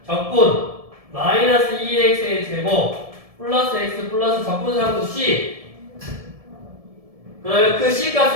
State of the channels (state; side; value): late; left; 1.7 ms